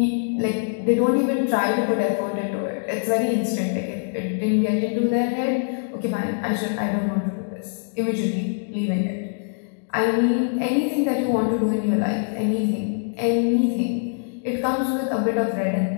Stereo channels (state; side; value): silent; right; digital silence